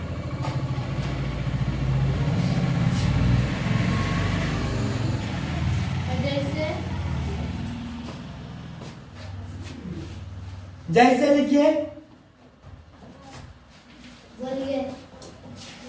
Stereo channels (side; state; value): both; identical; correlation 1.00